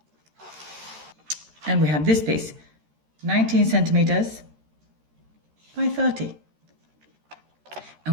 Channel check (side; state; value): left; late; 13 ms